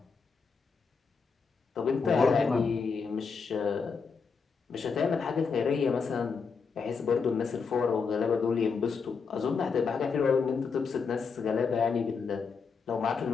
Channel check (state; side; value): quieter; right; 5.3 dB